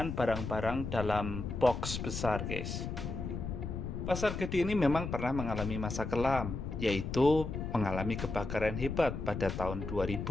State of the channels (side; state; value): left; noise; rumble, 5 dB below the sound